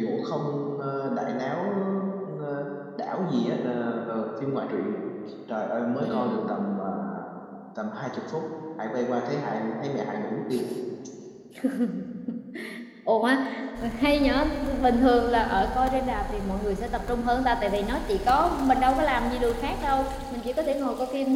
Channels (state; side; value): identical; both; correlation 1.00